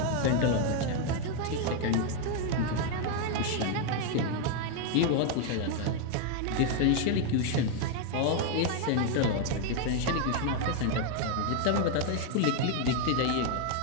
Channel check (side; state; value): both; different; correlation 0.01